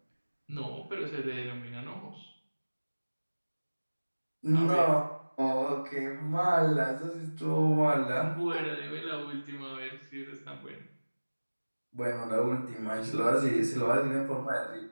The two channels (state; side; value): inverted; both; correlation -1.00